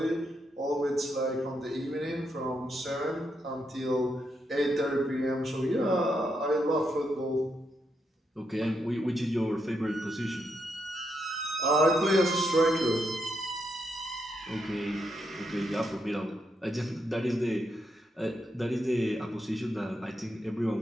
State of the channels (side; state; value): both; normal; correlation 0.80